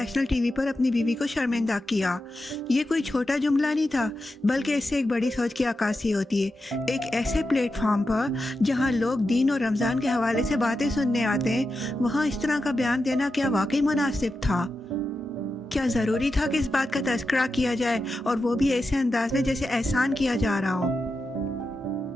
ٹی وی پر اپنی بیوی کو شرمندہ کیا۔ یہ کوئی چھوٹا جملہ نہیں تھا، بلکہ اس سے ایک بڑی سوچ کی عکاسی ہوتی ہے۔ ایک ایسے پلیٹ فارم پر جہاں لوگ دین اور رمضان کے حوالے سے باتیں سننے آتے ہیں، وہاں اس طرح کا بیان دینا کیا واقعی مناسب تھا؟ کیا ضروری تھا کہ اس بات کا تذکرہ کیا جائے، اور وہ بھی ایسے انداز میں جیسے احسان کیا جا رہا ہو؟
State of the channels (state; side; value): normal; both; correlation 0.89